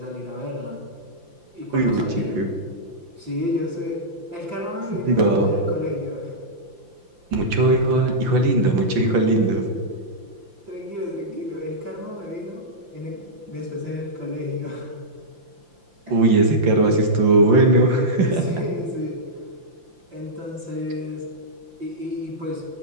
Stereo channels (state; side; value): late; left; 5.8 ms